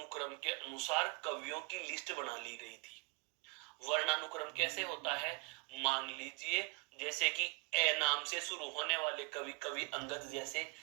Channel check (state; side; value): quieter; left; 28.9 dB